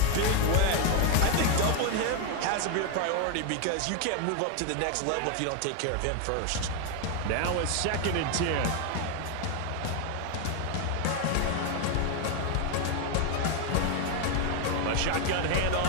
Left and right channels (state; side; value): different; both; correlation 0.01